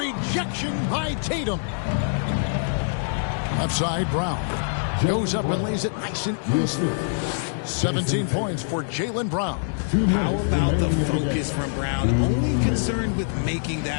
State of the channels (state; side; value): silent; right; digital silence